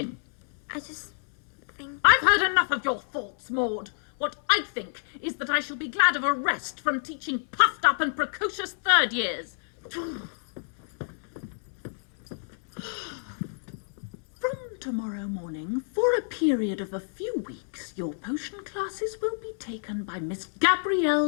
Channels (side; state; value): right; silent; 59 dB below the other